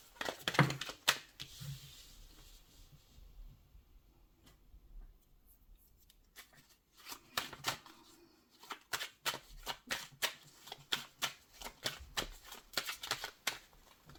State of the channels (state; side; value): identical; both; correlation 1.00